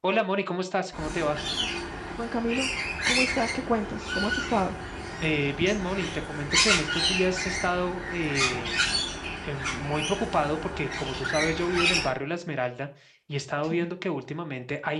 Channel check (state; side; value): identical; both; correlation 1.00